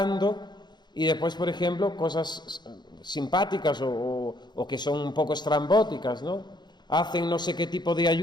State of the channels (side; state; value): right; late; 0.21 ms